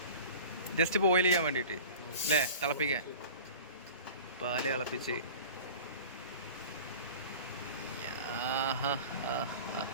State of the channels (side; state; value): both; inverted; correlation -0.39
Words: ജസ്റ്റ് ബോയിൽ ചെയ്യാൻ വേണ്ടിയിട്ട് അല്ലേ, തിളപ്പിക്കാൻ. പാല് തിളപ്പിച്ച്